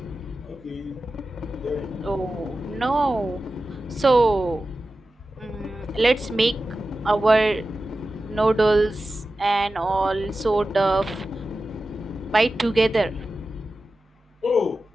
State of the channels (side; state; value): both; normal; correlation 0.94